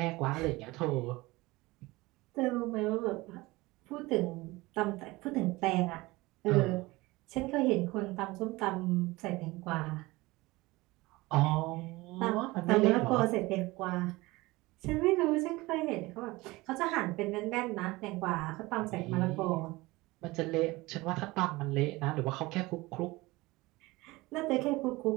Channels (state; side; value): quieter; left; 21.1 dB